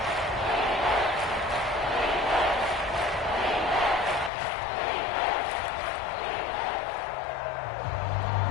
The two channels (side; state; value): right; drops out; at 4.3 s